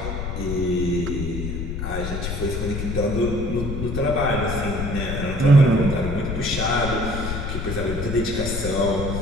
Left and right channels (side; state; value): left; noise; rumble, 4 dB below the sound